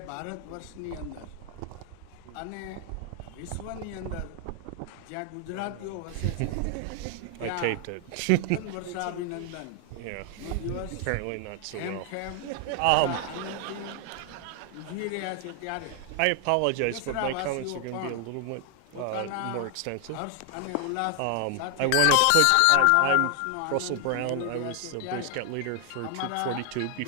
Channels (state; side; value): different; both; correlation 0.00